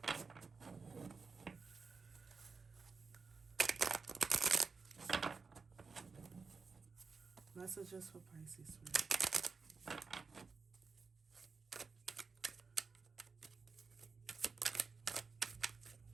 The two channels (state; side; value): quieter; left; 4.8 dB